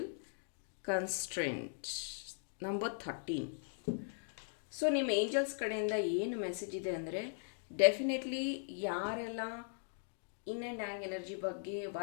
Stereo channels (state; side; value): silent; right; digital silence